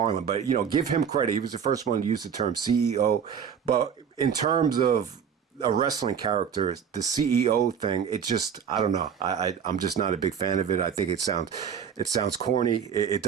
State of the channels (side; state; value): left; quieter; 7.6 dB